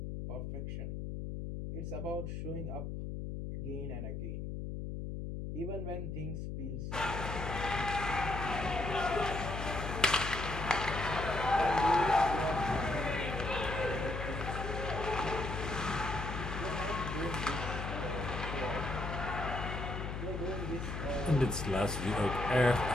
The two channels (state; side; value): noise; left; hum, 5 dB below the sound